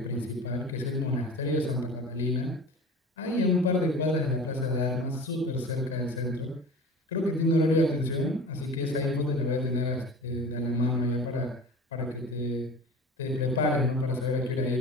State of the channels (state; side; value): normal; both; correlation 0.37